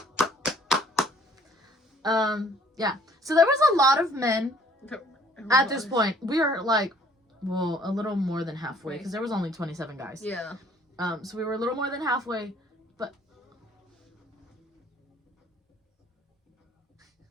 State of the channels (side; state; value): both; normal; correlation 0.58